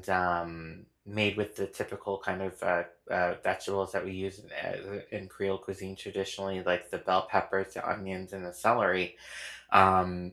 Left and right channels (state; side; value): identical; both; correlation 1.00